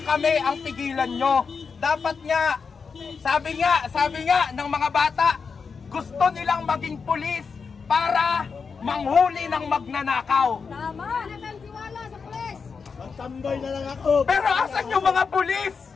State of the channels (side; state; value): right; quieter; 5.4 dB